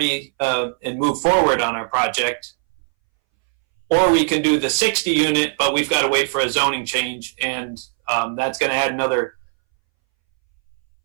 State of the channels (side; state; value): left; silent; 64 dB below the other